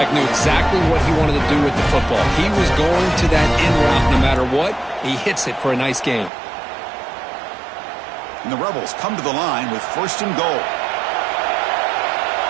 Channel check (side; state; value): left; drops out; at 6.3 s